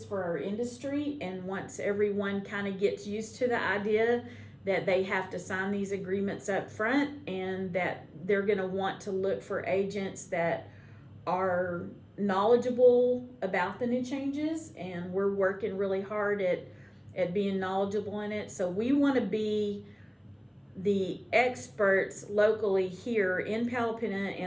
for our industry. And once everyone kind of gets used to the idea that they have to sign these agreements up front, and that they're going to want to look for agents that are knowledgeable about the new changes, and we're working really hard at being knowledgeable in it. So we want to be the experts locally here in Palapina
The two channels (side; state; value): both; identical; correlation 1.00